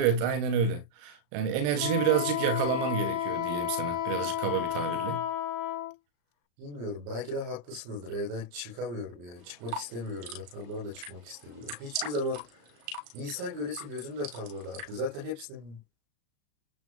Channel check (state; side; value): late; left; 34 ms